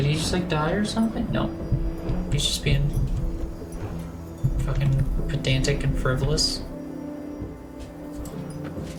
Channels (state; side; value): identical; both; correlation 1.00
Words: he just like die or something? No. He's just being fucking pedantic and frivolous.